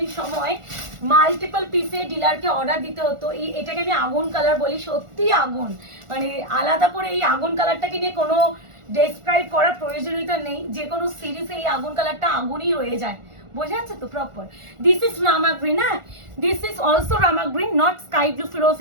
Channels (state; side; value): late; left; 1.4 ms